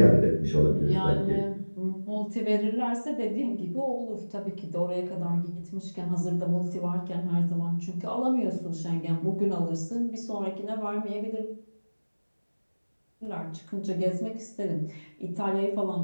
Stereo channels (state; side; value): inverted; both; correlation -1.00